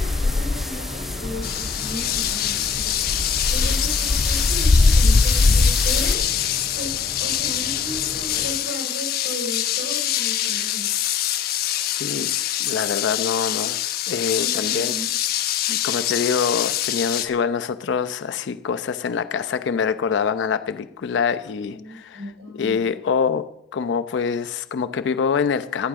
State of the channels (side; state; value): right; quieter; 5.7 dB